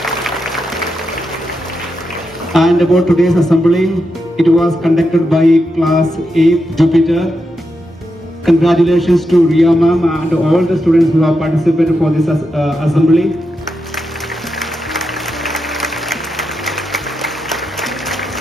And about today's assembly, it was conducted by class 8 Jupiter. Congratulations to Ria ma'am and all the students who have participated for this assembly.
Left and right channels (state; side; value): normal; both; correlation 0.86